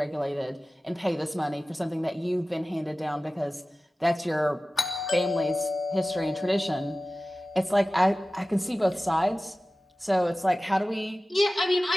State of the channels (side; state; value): both; normal; correlation 0.96